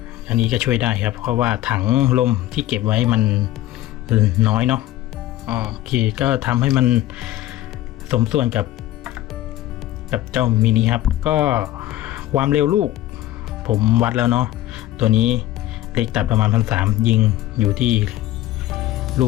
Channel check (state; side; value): quieter; right; 14.7 dB